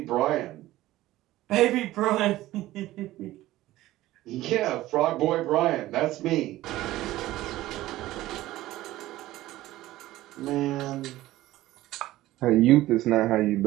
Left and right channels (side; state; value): left; quieter; 16.1 dB